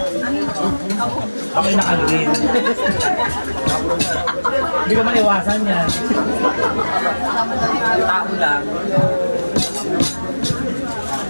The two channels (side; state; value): both; inverted; correlation -1.00